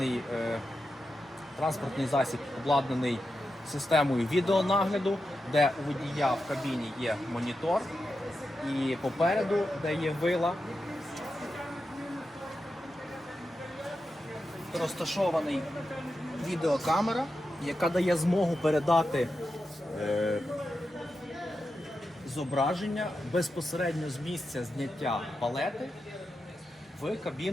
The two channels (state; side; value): normal; both; correlation 0.89